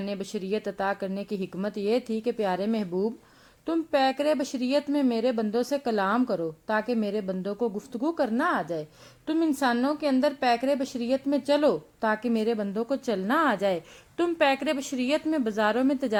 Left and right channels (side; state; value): both; identical; correlation 1.00